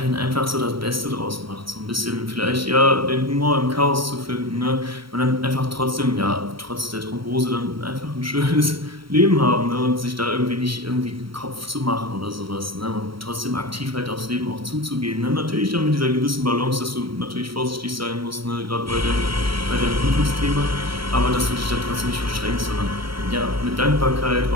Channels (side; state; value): left; late; 0.74 ms